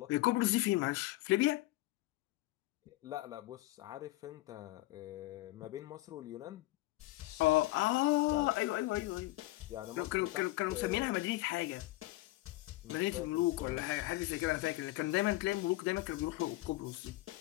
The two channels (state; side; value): quieter; right; 18.5 dB